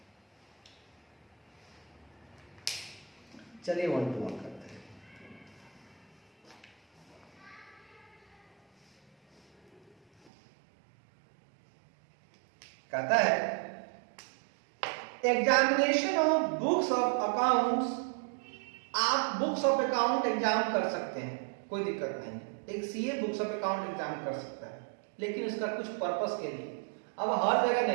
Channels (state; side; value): drops out; left; at 10.3 s